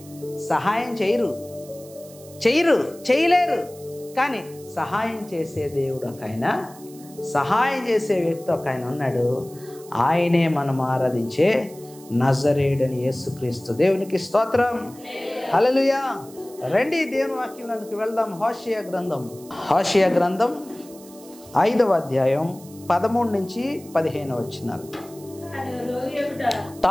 సహాయం చేయలేరు. కానీ సహాయం చేసే దేవుడు ఒక ఆయన, సహాయం చేసే వ్యక్తి ఒక ఆయన ఉన్నాడు. ఆయనే మనం ఆరాధించే నజరేయుడని యేసుక్రీస్తు. దేవునికి స్తోత్రం. హల్లెలూయా. రండి దేవుని వాక్యంలోకి వెళ్దాం. హోషేయ గ్రంథం 5వ అధ్యాయం 13 నుంచి 15 వచనాలు.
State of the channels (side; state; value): right; noise; hiss, 21 dB below the sound